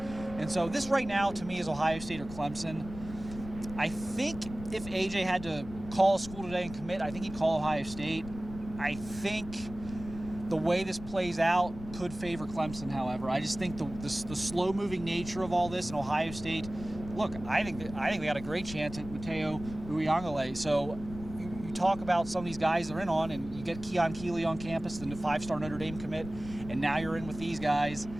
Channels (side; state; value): left; noise; rumble, 13 dB below the sound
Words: and so this right now to me is Ohio State or Clemson. I think if AJ had to call a school today and commit, I think he'd call Ohio State. I think the way this plays out could favor Clemson, however. I just think the slow-moving nature of all this in Ohio State, look, I think they got a great chance at Mateo Uyangale. So you talk about some of these guys they're in on, and you get Keon Keeley on campus, the 5-star Notre Dame commit, and now you're in with these guys.